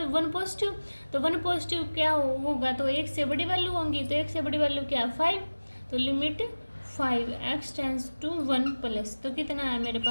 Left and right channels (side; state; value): both; inverted; correlation -1.00